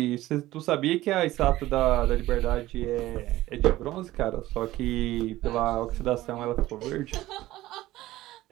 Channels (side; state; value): left; quieter; 16.3 dB